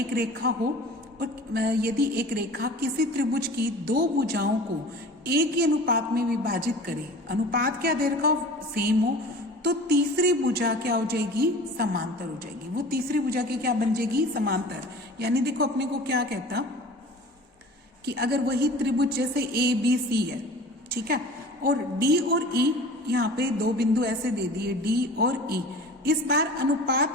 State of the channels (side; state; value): both; normal; correlation 0.41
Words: रेखा हो और यदि एक रेखा किसी त्रिभुज की दो भुजाओं को एक ही अनुपात में विभाजित करे, अनुपात क्या दे रखा हो, सेम हो, तो तीसरी भुजा क्या हो जाएगी, समांतर हो जाएगी। वो तीसरी भुजा की क्या बन जाएगी, समांतर। यानी देखो अपने को क्या कहता कि अगर वही त्रिभुज जैसे ए बी सी है, ठीक है, और डी और ई यहाँ पे दो बिंदु ऐसे दे दिए डी और ई, इस बार